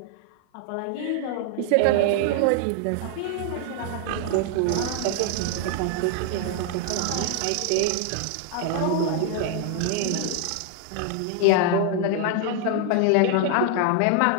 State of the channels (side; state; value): both; different; correlation 0.00